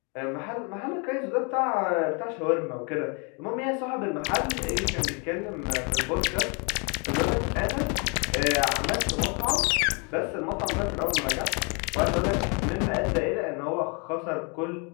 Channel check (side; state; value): right; quieter; 34.0 dB